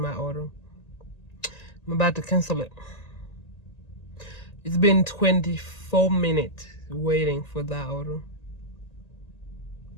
order. I'm about to cancel it. It's been 24 minutes waiting for that order.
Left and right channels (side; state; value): right; late; 1.9 ms